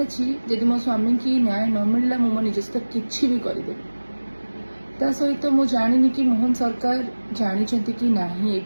जदि मो स्वामी की न्याय न मिलला मो निज सहित किसी भी करदे। ता सहित मु जानी कि मोहन सरकार जानी कि ना ए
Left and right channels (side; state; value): both; inverted; correlation -1.00